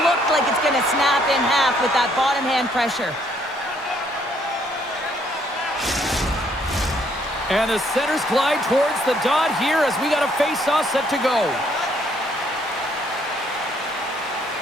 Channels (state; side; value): normal; both; correlation 0.67